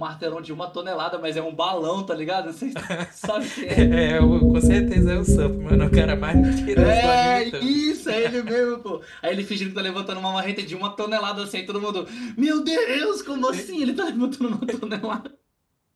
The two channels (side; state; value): both; identical; correlation 1.00